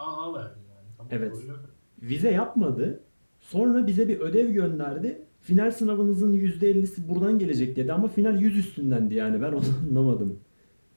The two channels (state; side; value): inverted; both; correlation -1.00